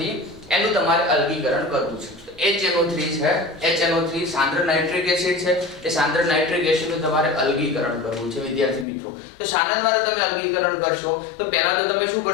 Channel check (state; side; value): drops out; right; at 8.8 s